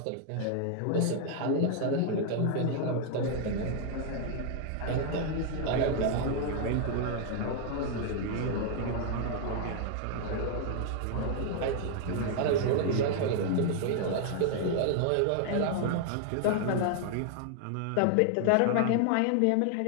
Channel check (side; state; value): both; different; correlation 0.00